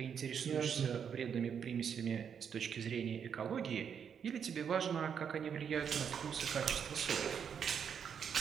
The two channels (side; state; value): left; quieter; 7.5 dB